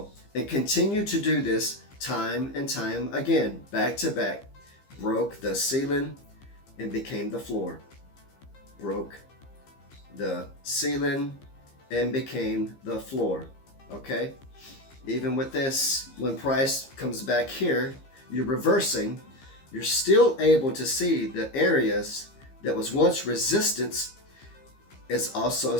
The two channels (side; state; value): right; late; 15 ms